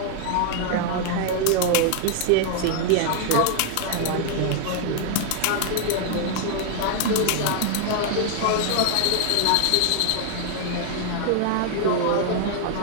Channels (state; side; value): different; both; correlation 0.00